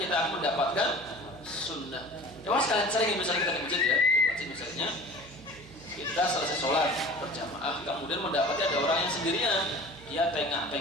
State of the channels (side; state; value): right; noise; hum, 20 dB below the sound